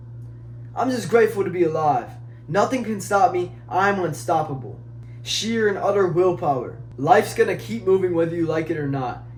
I'm just grateful to be alive. Nothing can stop me. I'm unstoppable. Sheer and utter willpower. Life's going to keep moving whether you like it or not.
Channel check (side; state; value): both; identical; correlation 1.00